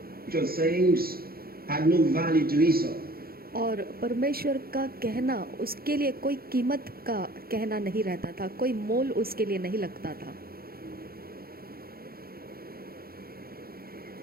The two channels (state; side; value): late; left; 0.44 ms